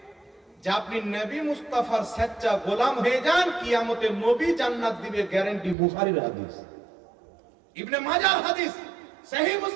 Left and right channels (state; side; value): drops out; left; at 5.8 s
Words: যে আপনি নবী মুস্তাফার সচ্চা গোলাম হয়ে যান, কিয়ামতে নবী জান্নাত দিবে, গ্যারান্টি। বুখারীর হাদিস, ইবনে মাজাহর হাদিস, সহিহ